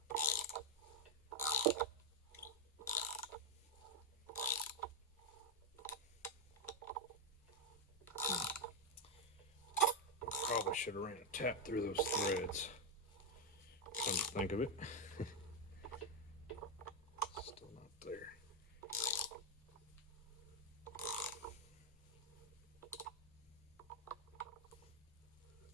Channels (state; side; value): normal; both; correlation 0.03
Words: Probably should have ran a tap through those threads. Come to think of it. Still not there.